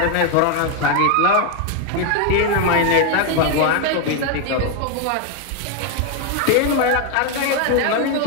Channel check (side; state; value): both; different; correlation 0.01